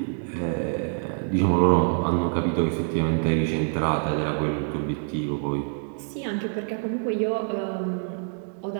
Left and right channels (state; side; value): silent; left; 60 dB below the other